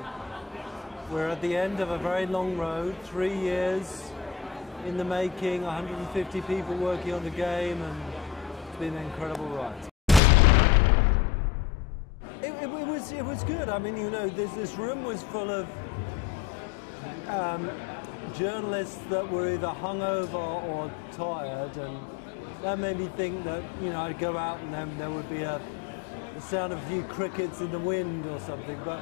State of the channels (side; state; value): right; drops out; at 10.2 s